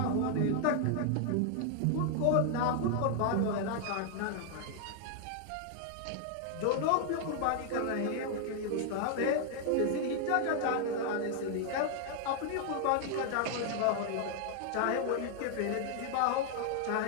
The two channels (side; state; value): both; different; correlation 0.00